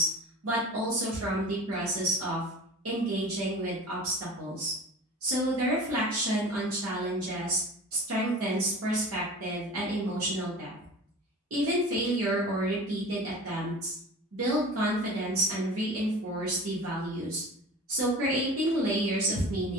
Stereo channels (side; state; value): both; normal; correlation 0.38